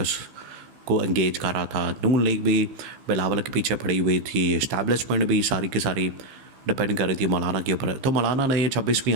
को इंगेज कर रहा था, नून लीग भी बिलावल के पीछे पड़ी हुई थी, इस्टेब्लिशमेंट भी सारी की सारी डिपेंड कर रही थी मौलाना के ऊपर। तो मौलाना ने ये 26वीं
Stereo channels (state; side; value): late; left; 15 ms